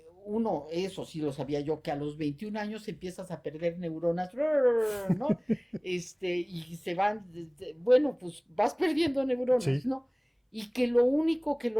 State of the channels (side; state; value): both; identical; correlation 1.00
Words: uno, eso sí lo sabía yo, que a los 21 años empiezas a perder neuronas, ¿no? Y se van, bueno, pues vas perdiendo neuronas, sí, ¿no? Y que lo único que